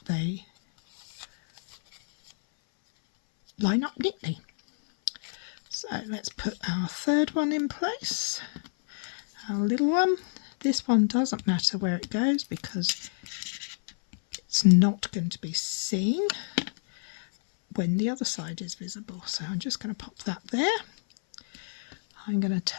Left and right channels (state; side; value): silent; right; 59 dB below the other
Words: they line up neatly. So let's put our third one in place, our little one. This one doesn't matter where it goes because it's not going to be seen when the other side is visible. So I'm just going to pop that there. I'm going to